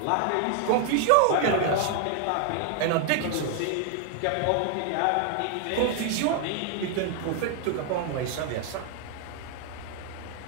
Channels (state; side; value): different; both; correlation 0.00